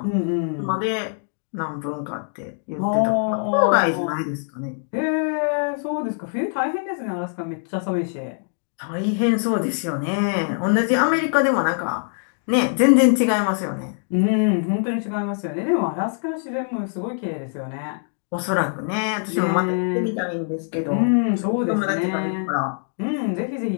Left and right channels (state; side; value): silent; right; 61 dB below the other